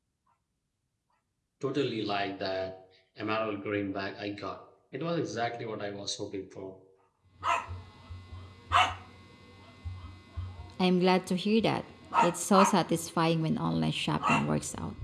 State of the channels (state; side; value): identical; both; correlation 1.00